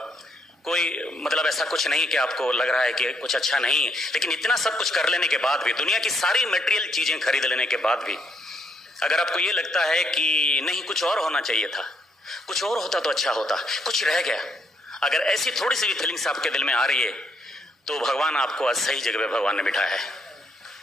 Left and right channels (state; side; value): normal; both; correlation 0.73